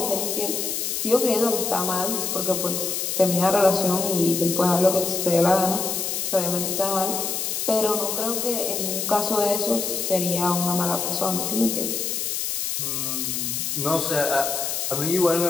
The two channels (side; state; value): left; noise; hiss, 2 dB below the sound